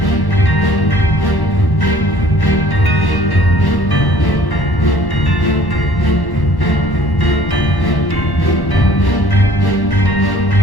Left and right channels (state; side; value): late; right; 1.1 ms